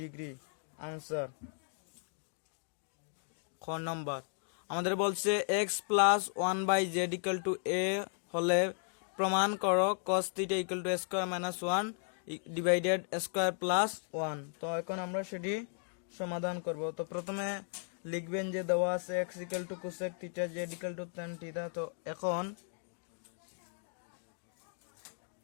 degree answer. খ নম্বর আমাদের বলছে x plus 1/z equal to a হলে প্রমাণ করো cos θ equal to a square minus 1 divided square plus 1। তো এখন আমরা সেটি সমাধান করব। তো প্রথমে লিখবেন যে দেওয়া আছে x equal to cosec θ, z equal to tan θ। তো এখন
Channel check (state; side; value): silent; right; 54 dB below the other